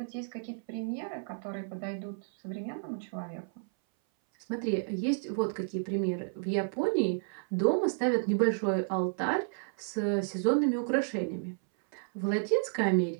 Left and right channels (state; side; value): silent; left; 57 dB below the other